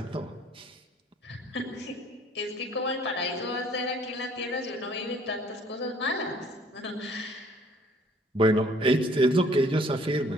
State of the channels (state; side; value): normal; both; correlation 0.58